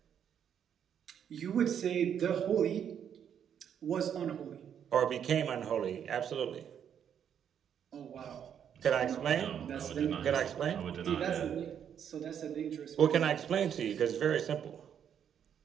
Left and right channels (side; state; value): left; quieter; 8.6 dB